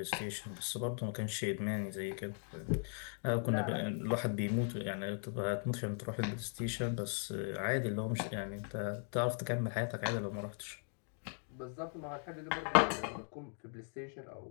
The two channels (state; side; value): silent; right; 52 dB below the other